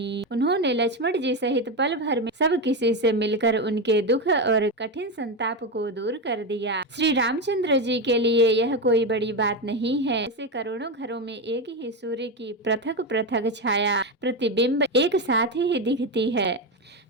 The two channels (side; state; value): both; normal; correlation 0.13